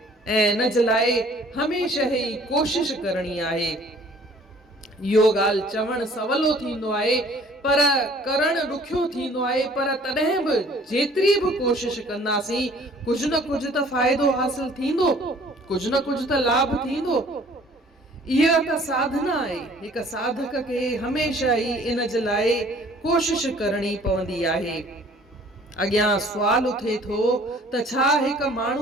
ऐं इन जे लाइ हमेशह ई कोशिश करणी आहे। इहो ॻाल्हि चवणु सवलो थींदो आहे पर करणु ॾुखियो थींदो आहे। पर तॾहिं बि जेतिरी बि कोशिश कंदासीं कुझु न कुझु त फ़ाइदो हासिल थींदो, कुझु न कुझु त लाभ थींदो। इहा त साधना आहे। हिकु साधक खे हमेशह ई इन जे लाइ कोशिश करणी पवंदी आहे। अॻियां सुवाल उथे थो त छा हिकु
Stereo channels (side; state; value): both; normal; correlation 0.54